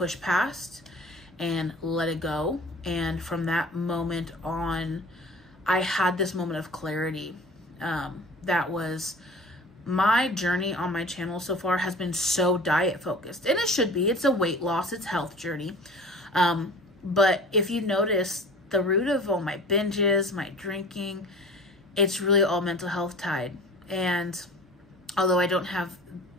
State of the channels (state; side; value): normal; both; correlation 0.42